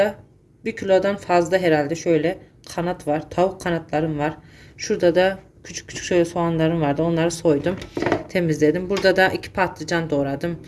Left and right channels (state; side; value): identical; both; correlation 1.00